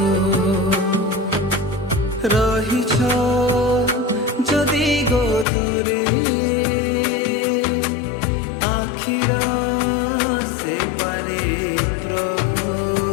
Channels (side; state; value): right; drops out; at 5.5 s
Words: রহিছ যদি গো দূরে আখির সেপারে প্রভু